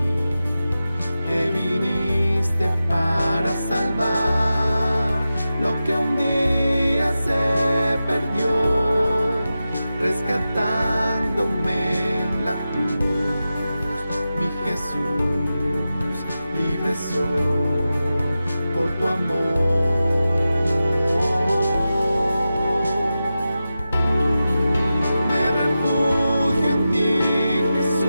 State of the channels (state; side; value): inverted; both; correlation -0.92